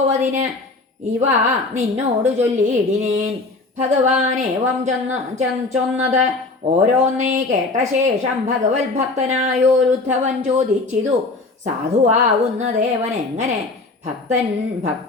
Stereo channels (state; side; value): quieter; right; 3.4 dB